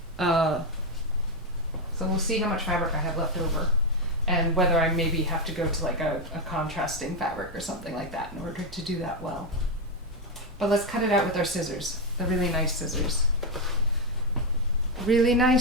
So we'll see how much fabric I have left over, and whether I maybe have to go to like a contrasting fabric or something like that in order to do that well. But let's cut it out with our scissors. The really nice scissors. Really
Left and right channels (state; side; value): normal; both; correlation 0.06